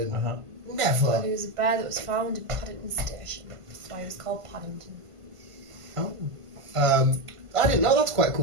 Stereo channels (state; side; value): late; left; 1.5 ms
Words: Uh-huh. Never. It was a bear that was found in Paddington Station. That's why it was called Paddington. Oh. I didn't know. That's quite a